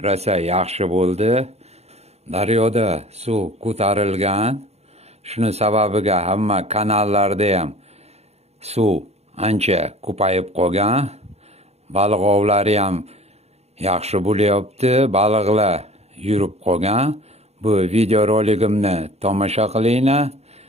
rosa yaxshi bo'ldi. Daryoda suv ko'tarilgan. Shuni sababiga hamma kanallarda ham suv ancha ko'payib qolgan. Baliq ovlari ham yaxshi bo'lyapti. Baliqlar yurib qolgan. Bu video roligimni tomosha qilinglar.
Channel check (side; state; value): left; late; 0.31 ms